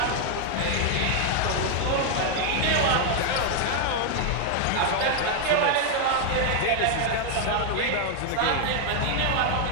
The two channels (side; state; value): both; different; correlation 0.00